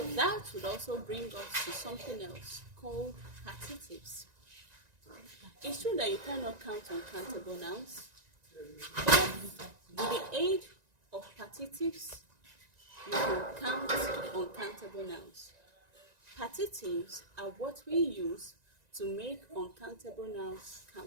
that would also bring us to something else called partitives. It's true that you cannot count uncountable nouns, but with the aid of partitives, you can count uncountable nouns. Partitives are what we use to make uncountable nouns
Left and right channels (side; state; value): left; late; 1.9 ms